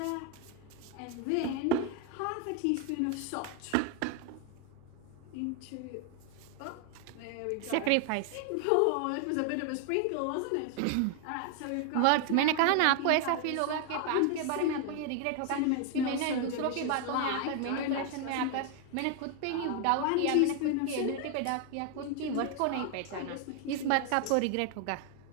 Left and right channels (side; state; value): both; different; correlation 0.01